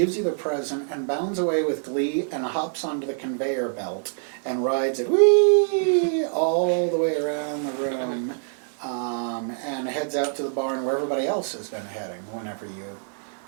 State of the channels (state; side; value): silent; left; digital silence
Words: you the present and bounds away with glee and hops onto the conveyor belt and rides it whee all the way around the room, and heads out to the barn where everybody else has been heading whenever you